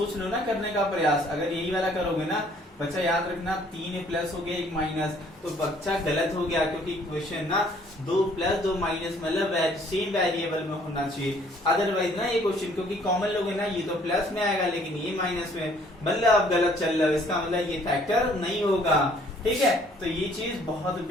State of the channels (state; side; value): normal; both; correlation 0.60